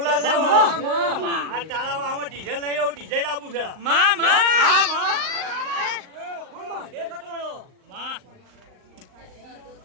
છે. આ તારામાં આમાં ડીઝલ નહીં આવું, ડીઝલ આપું છે. કે કટોળો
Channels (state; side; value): late; left; 38 ms